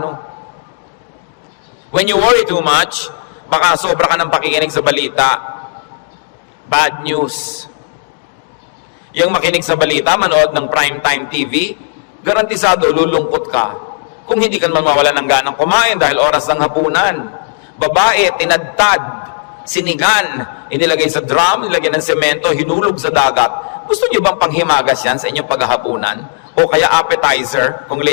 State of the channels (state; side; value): silent; right; digital silence